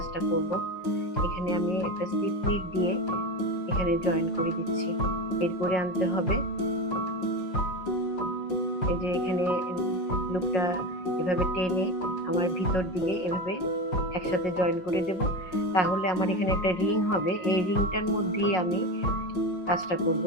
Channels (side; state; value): right; late; 5.5 ms